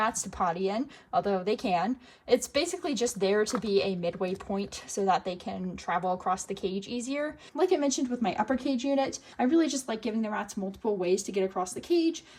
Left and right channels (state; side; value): identical; both; correlation 1.00